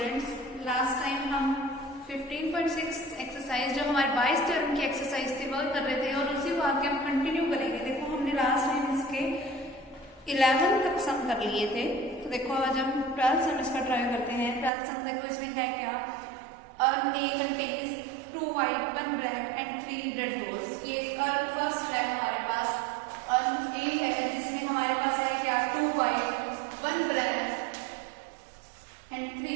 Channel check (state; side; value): drops out; left; at 14.7 s